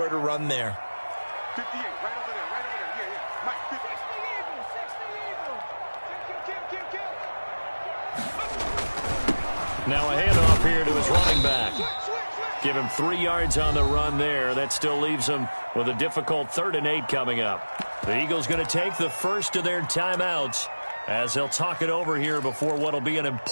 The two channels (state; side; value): inverted; both; correlation -1.00